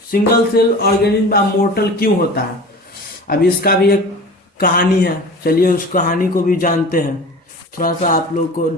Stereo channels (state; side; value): normal; both; correlation 0.37